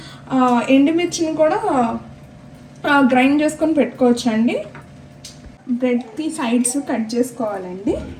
ఎండుమిర్చిని కూడా గ్రైండ్ చేసుకొని పెట్టుకోవచ్చు అండి. బ్రెడ్కి సైడ్స్ కట్ చేసుకోవాలండి.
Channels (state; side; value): identical; both; correlation 1.00